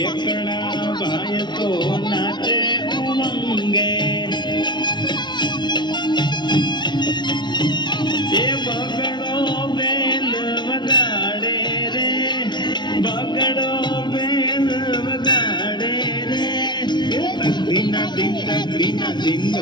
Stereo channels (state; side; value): late; right; 0.21 ms